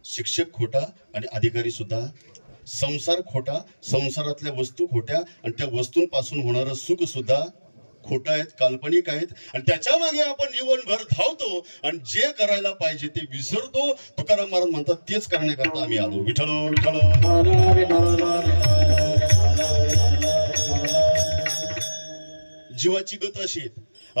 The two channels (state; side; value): inverted; both; correlation -1.00